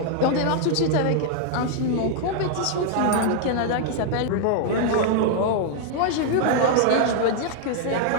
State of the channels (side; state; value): both; different; correlation -0.01